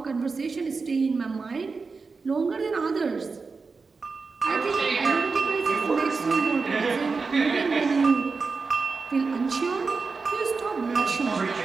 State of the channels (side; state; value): left; quieter; 4.5 dB